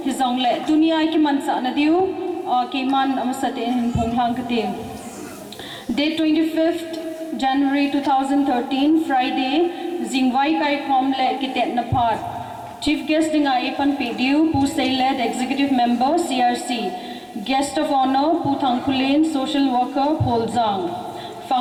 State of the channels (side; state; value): both; identical; correlation 1.00